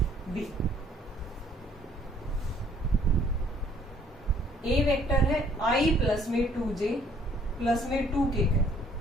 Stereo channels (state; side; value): normal; both; correlation 0.61